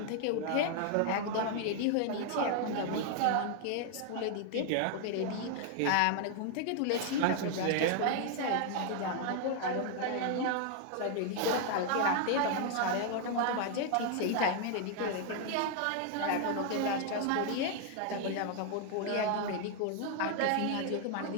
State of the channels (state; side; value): different; both; correlation 0.00